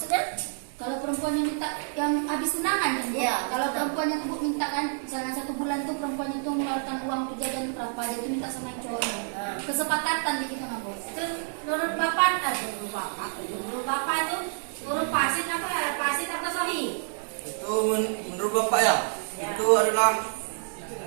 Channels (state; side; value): silent; left; digital silence